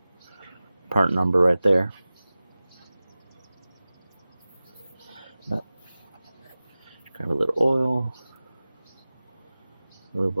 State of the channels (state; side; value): inverted; both; correlation -0.97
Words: part number right there. Grab a little oil, move